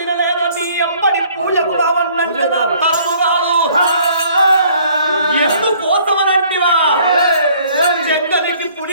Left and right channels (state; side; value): inverted; both; correlation -0.58